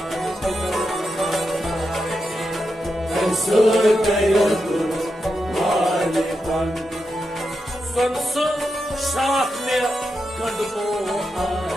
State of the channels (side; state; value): both; normal; correlation 0.86